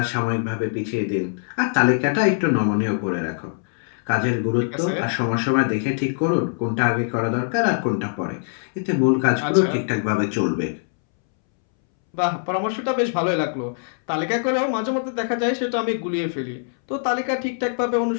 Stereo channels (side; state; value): right; silent; 64 dB below the other